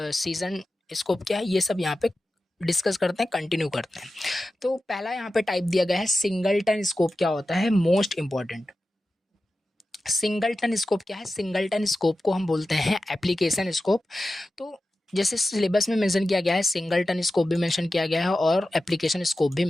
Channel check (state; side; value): normal; both; correlation 0.93